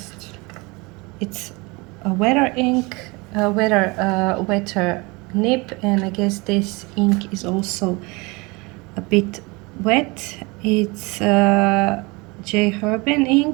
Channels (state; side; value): quieter; left; 26.2 dB